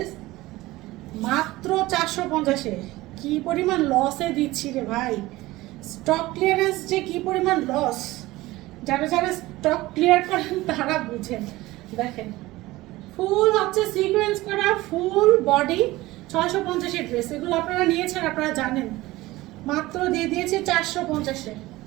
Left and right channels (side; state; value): left; quieter; 18.7 dB